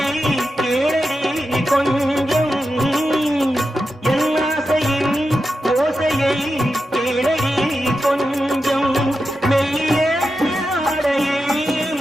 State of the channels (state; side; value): normal; both; correlation 0.90